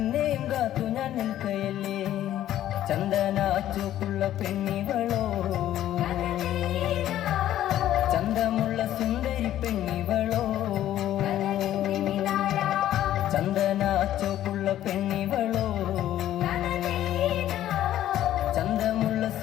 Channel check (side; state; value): right; quieter; 12.5 dB